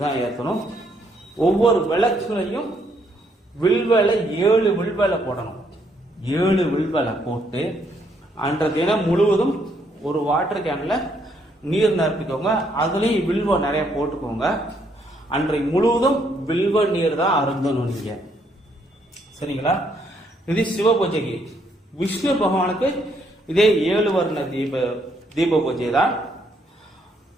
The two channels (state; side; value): normal; both; correlation 0.72